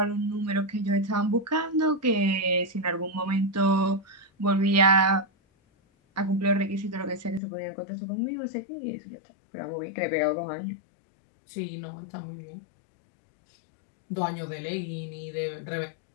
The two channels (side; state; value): right; drops out; at 7.4 s